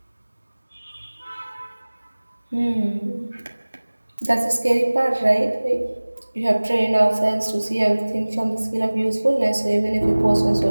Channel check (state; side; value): inverted; both; correlation -1.00